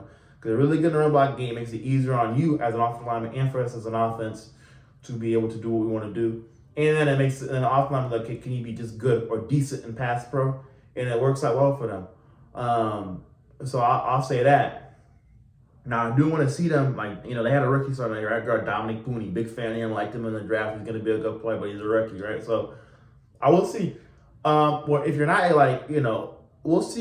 Because really good in the run blocking game makes it easier on you as an offensive lineman and for us as an offense to be able to do what we want to do. And then it makes an offensive lineman can you be just good or decent in pass pro? And it works out well for them. So I'll say that. Now, I do want to see them, they had a rookie starting at right guard, Dominic Pooney. Big fan of him, liked him in the draft. He's going to be a good player, but he's a rookie, right? So I will see. Well, if you're not we'll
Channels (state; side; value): identical; both; correlation 1.00